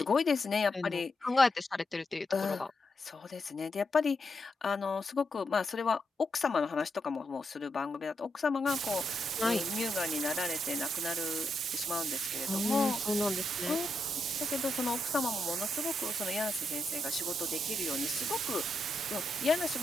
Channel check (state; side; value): normal; both; correlation 0.83